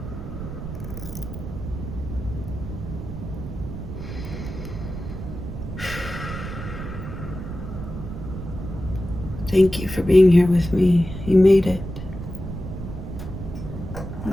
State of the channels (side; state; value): right; noise; rumble, 8 dB below the sound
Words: Thank you for being here with me. You made it.